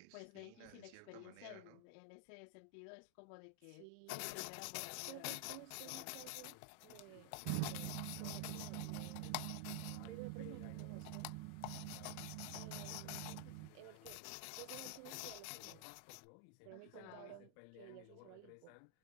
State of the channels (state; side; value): different; both; correlation 0.00